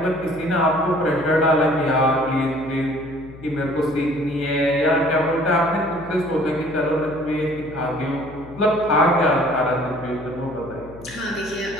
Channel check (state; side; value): noise; left; hum, 18 dB below the sound